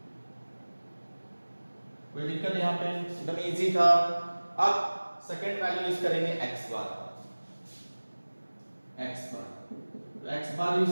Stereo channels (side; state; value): both; inverted; correlation -1.00